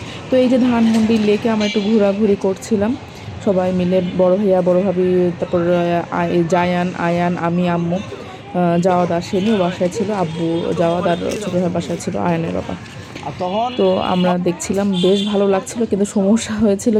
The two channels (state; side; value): identical; both; correlation 1.00